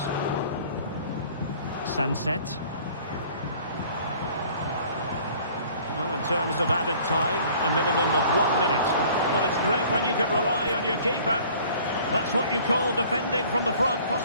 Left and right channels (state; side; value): inverted; both; correlation -0.52